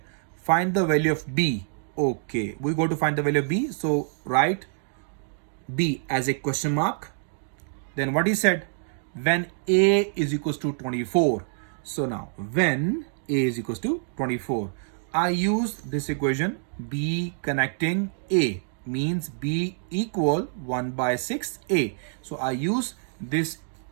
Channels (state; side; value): silent; left; digital silence